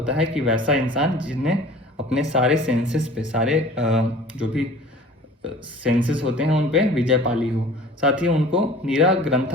है कि वैसा इंसान जिसने अपने सारे सेंसेस पे, सारे जो भी सेंसेस होते हैं उन पे विजय पाली हो। साथ ही उनको नीरा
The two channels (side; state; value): both; normal; correlation 0.45